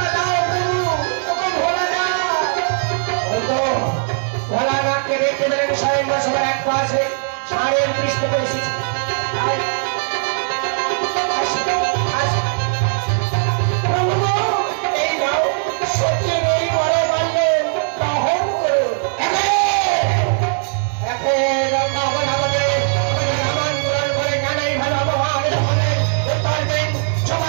ভোলানাথকে দেখতে পেলেন স্বয়ংবর সভার এক পাশে সাড়ে দৃষ্টি করে এসেছে। এই নাও সত্যি নেই বড় মান্য গ্রহণ করো। আমন্ত্রণ করে জানাই ভালো আবহাওয়া উত্তর দেন,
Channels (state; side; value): silent; left; 67 dB below the other